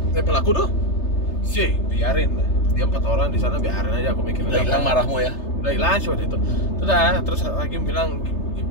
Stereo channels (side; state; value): right; late; 3.3 ms